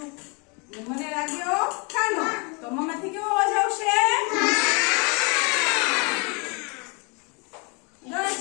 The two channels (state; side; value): quieter; right; 32.5 dB